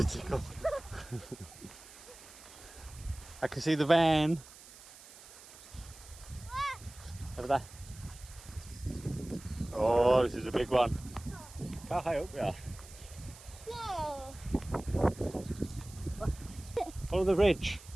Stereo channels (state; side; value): noise; right; hiss, 19 dB below the sound